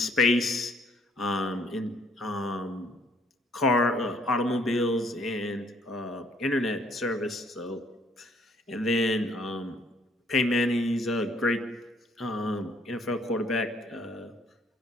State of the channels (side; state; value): both; normal; correlation 0.64